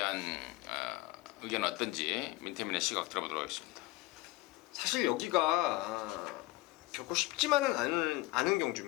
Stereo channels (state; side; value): quieter; right; 19.4 dB